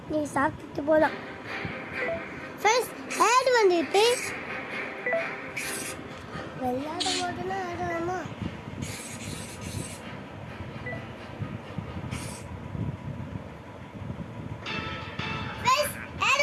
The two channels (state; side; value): identical; both; correlation 1.00